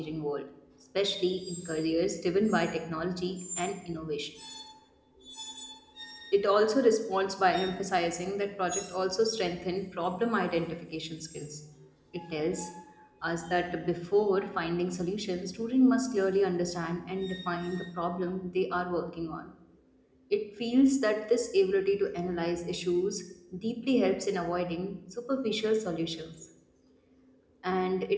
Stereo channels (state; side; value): identical; both; correlation 1.00